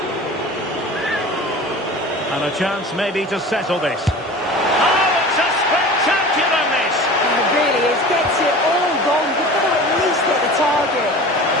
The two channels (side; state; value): both; normal; correlation 0.38